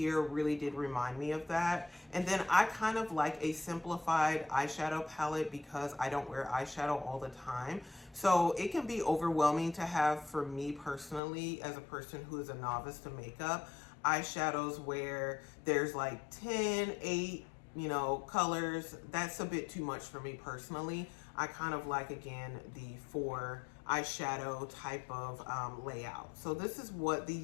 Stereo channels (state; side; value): drops out; right; at 11.2 s